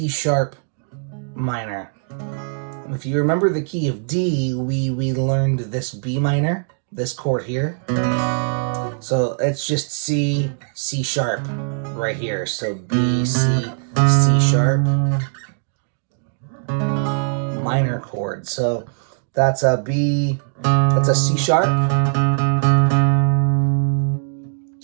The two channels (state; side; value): silent; left; digital silence